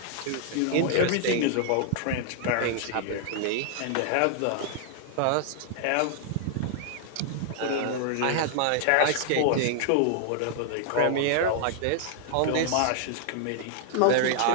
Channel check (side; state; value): both; different; correlation 0.00